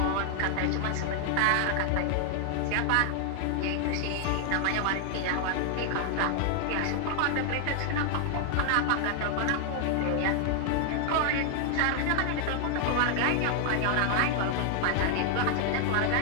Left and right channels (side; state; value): both; different; correlation 0.00